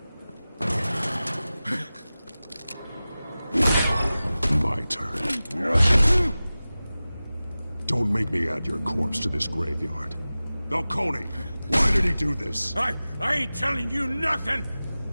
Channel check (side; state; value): both; inverted; correlation -0.97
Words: My turn. Don't make me add your corpse to this graveyard. Falcone, why did he do this? I ain't telling you nothing!